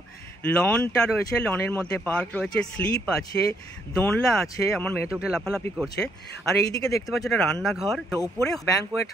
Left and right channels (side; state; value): both; normal; correlation 0.72